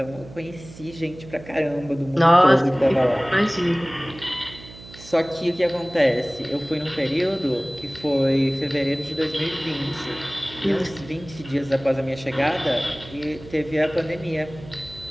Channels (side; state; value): right; noise; hum, 18 dB below the sound